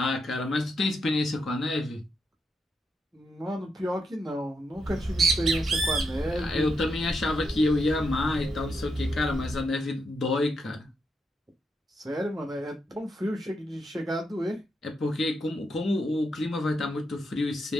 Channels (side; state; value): both; normal; correlation 0.82